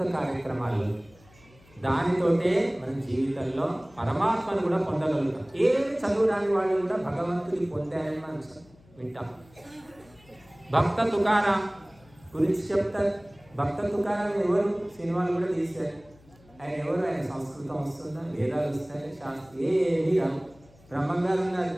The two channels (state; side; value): noise; left; hum, 27 dB below the sound